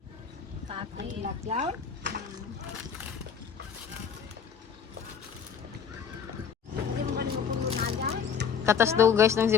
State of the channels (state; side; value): quieter; right; 7.0 dB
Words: Ay, latyaw. Katas daw guys ng